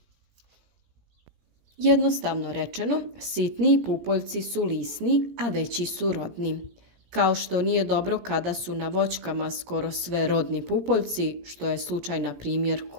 Jednostavno rečeno, sitniji pupoljci su lisni, a veći su rodni. Kao što nije dobro kada su na voćkama skoro sve rodni pupoljci, što je slučaj na primjer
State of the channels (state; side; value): late; left; 17 ms